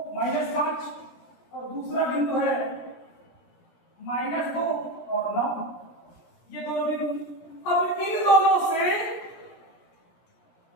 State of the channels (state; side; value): late; right; 17 ms